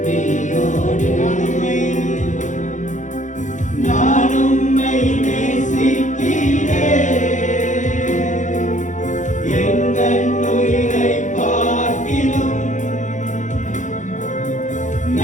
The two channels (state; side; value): late; right; 0.36 ms